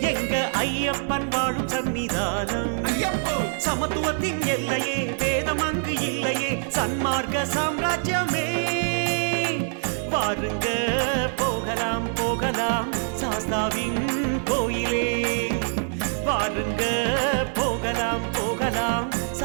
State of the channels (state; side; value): silent; left; digital silence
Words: எங்க ஐயப்பன் வாழும் சன்னிதானம். சமத்துவத்தின் எல்லையே, வேதம் அங்கு இல்லையே, சன்மார்க்க சாம்ராஜ்யமே. வாருங்க போகலாம் போகலாம் சாஸ்தாவின் கோயிலே. வாருங்க போகலாம் போகலாம்